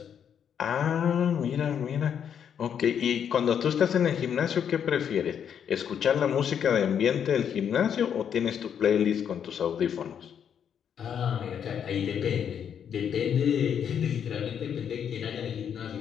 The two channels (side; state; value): right; quieter; 8.3 dB